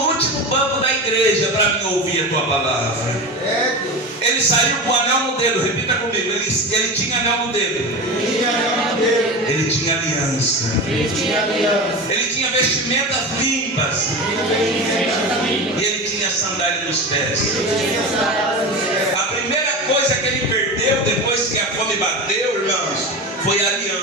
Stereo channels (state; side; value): normal; both; correlation 0.26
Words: último banco da igreja para me ouvir a tua palavra. Ele saiu com o anel no dedo, repita comigo. Ele tinha anel no dedo. Ele tinha aliança. Ele tinha vestimentas limpas. E ele tinha sandália nos pés. A primeira coisa que ele perdeu depois que a fome bateu, irmãos, foi a